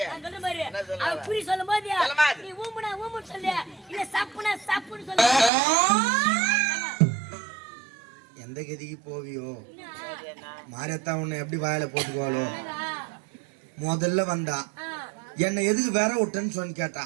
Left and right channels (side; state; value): left; drops out; at 5.5 s